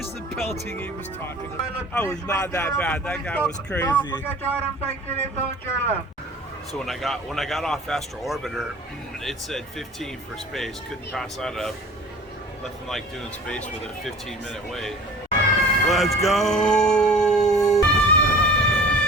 the pelting he was talking about. That was not that bad, that guy was crazy. So when I got off Astro Orboter, it said 15 for space. Couldn't pass that up. Nothing like doing space with a 15-minute wait. Let's go!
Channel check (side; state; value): both; normal; correlation 0.44